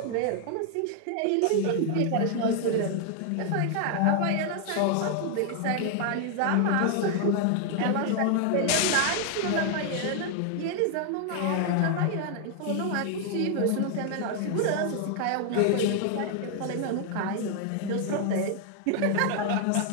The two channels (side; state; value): both; different; correlation 0.00